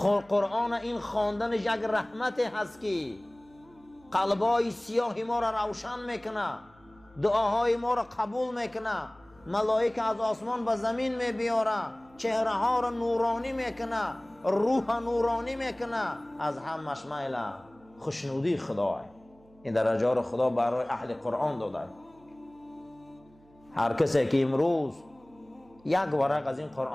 قرآن این خواندنش یک رحمت هست که قلبای سیاه ما را روشن میکنه، دعاهای ما را قبول میکنه، ملائکه از آسمان به زمین میبیاره، چهره ها را نورانی میکنه، روح نورانی میکنه. از همش میل خوشنودی خدا. این درجه را خدا برای اهل قرآن داده. هر کسی که امروز یک ورق از این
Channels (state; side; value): noise; right; hum, 29 dB below the sound